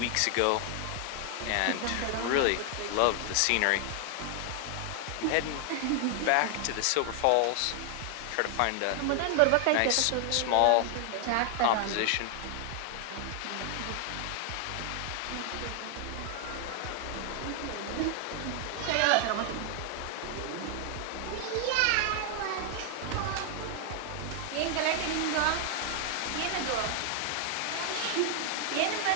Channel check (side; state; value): both; different; correlation 0.00